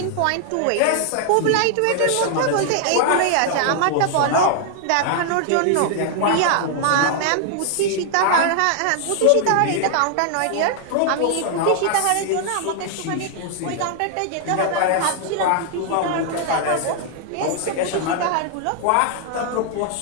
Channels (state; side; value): different; both; correlation 0.00